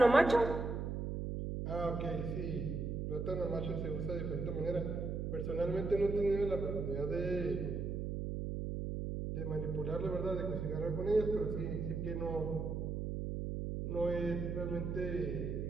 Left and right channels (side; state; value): right; noise; hum, 3 dB below the sound